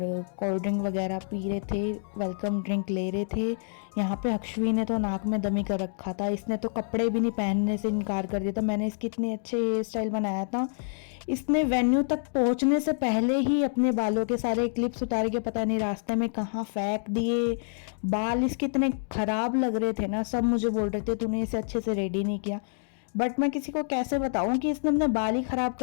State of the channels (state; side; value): silent; right; digital silence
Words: कोल्ड ड्रिंक वगैरह पी रहे थे, वेलकम ड्रिंक ले रहे थे। यहाँ पे अक्षवी ने तो नाक में दमी कर रखा था, इसने तो कपड़े भी नहीं पहनने से इनकार कर दिया था। मैंने इसकी इतने अच्छे हेयर स्टाइल बनाया था, इसने वेन्यू तक पहुँचने से पहले ही अपने बालों के सारे क्लिप्स उतार के पता नहीं रास्ते में कहाँ फेंक दिए। बाल इसके इतने ख़राब लग रहे थे ना, सब मुझे बोल रहे थे तूने इसे अच्छे से रेडी नहीं किया। बट मैं किसी को कैसे बताऊं कि इसने अपने बाल ही खराब